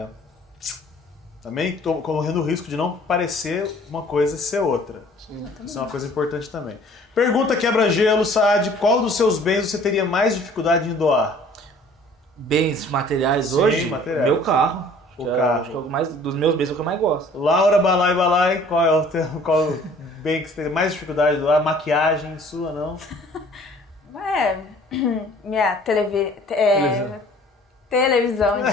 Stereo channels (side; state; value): both; normal; correlation 0.52